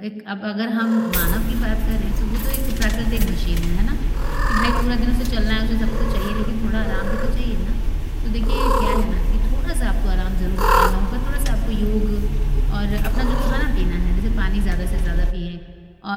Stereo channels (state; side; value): identical; both; correlation 1.00